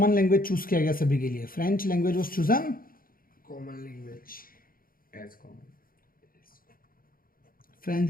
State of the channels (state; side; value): late; right; 0.42 ms